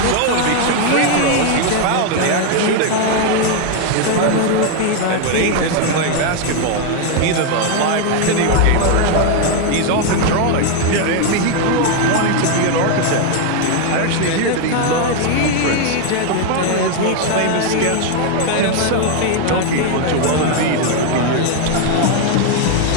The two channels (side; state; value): both; different; correlation 0.01